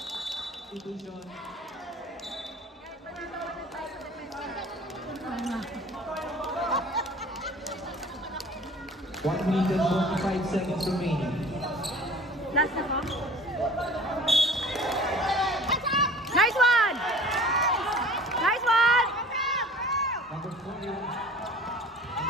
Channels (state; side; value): normal; both; correlation 0.46